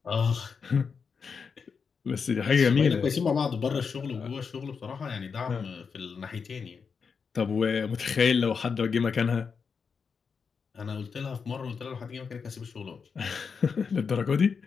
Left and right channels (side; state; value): right; quieter; 5.7 dB